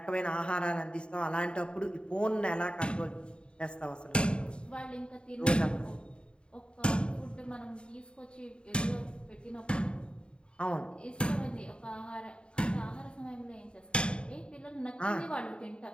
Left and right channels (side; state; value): right; late; 0.053 ms